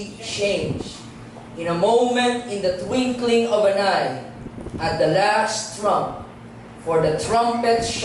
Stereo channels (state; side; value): identical; both; correlation 1.00